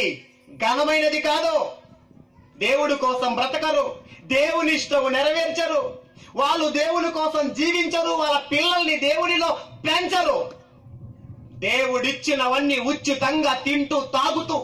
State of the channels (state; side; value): identical; both; correlation 1.00